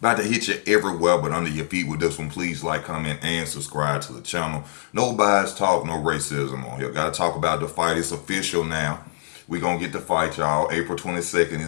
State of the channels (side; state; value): right; silent; digital silence